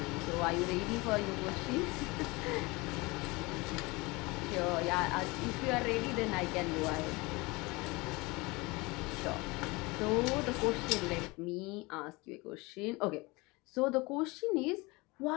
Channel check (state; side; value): quieter; right; 24.3 dB